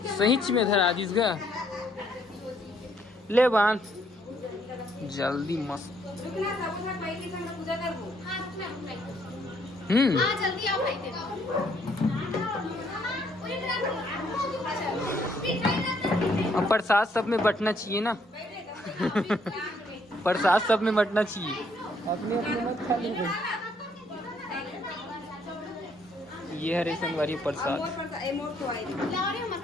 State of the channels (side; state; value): both; normal; correlation 0.68